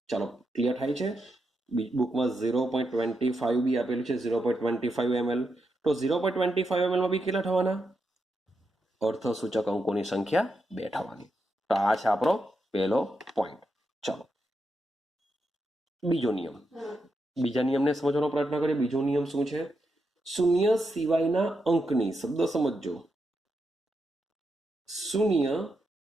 ચાલો ક્લિયર થાય છે? બુકમાં 0.25 બી આપેલું છે, 0.25 ml. તો 0.25 ml માં બી કેટલા થવાના? અર્થ સૂચક અંકોની સંખ્યા 2 થવાની. તો આ છે આપણો પહેલો પોઈન્ટ. ચાલો બીજો નિયમ, બીજા નિયમને સમજવાનો પ્રયત્ન કરીએ. બીજો નિયમ શું છે? શૂન્ય સિવાયના અંકની, શબ્દ સમજજો, શૂન્ય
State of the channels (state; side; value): normal; both; correlation 0.84